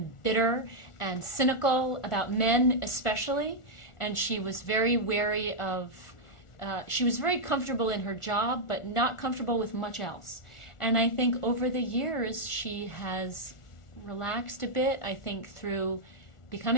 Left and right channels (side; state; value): right; late; 1.4 ms